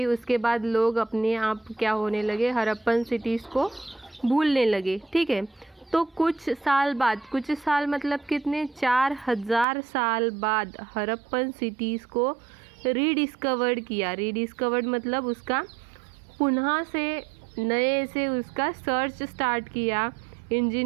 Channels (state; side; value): drops out; left; at 9.7 s